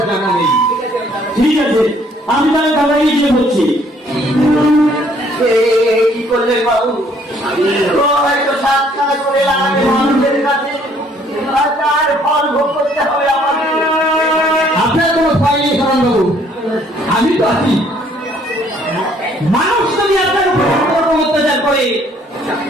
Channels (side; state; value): both; normal; correlation 0.63